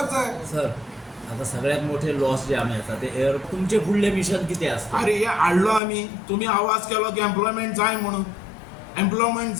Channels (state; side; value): drops out; right; at 5.8 s